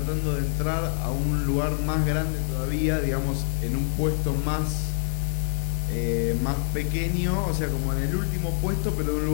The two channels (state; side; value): silent; right; 61 dB below the other